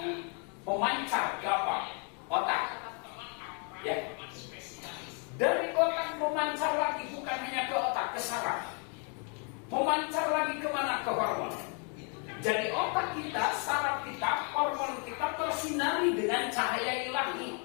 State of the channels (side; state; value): right; quieter; 38.5 dB